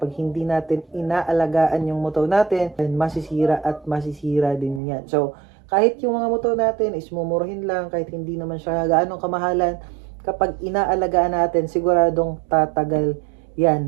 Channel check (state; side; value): drops out; left; at 4.8 s